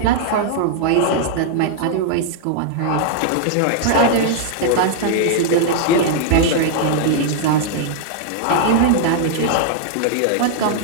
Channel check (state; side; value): different; both; correlation -0.01